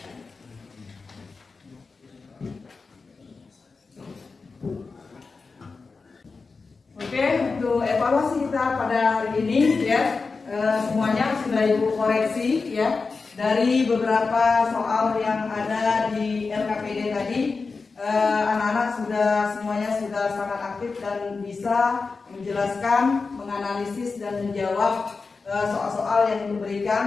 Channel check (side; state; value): right; quieter; 4.4 dB